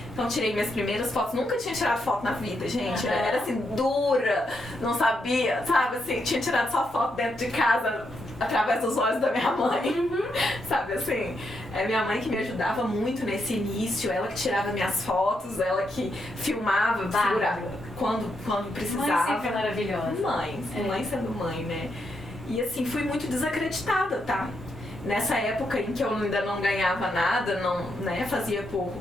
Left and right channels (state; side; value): normal; both; correlation 0.81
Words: Então tirei minhas primeiras fotos, nunca tinha tirado foto na vida, gente. Era assim, dura, não sabia, sabe? Assim, tinha tirado só foto dentro de casa, através dos olhos da minha mãe, sabe assim? É minha mãe que me ajudava muito nesse início, ela que tirava minhas fotos, ela que filmava, segurava quando precisava. Mãe sempre maravilhosa. Mãe sendo mãe, né? E assim, fui muito desacreditada, tá? Nessa época em que eu ainda não ganhava nada, não, né, fazia